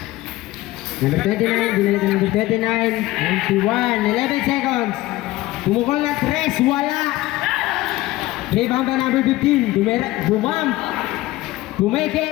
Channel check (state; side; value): quieter; right; 17.8 dB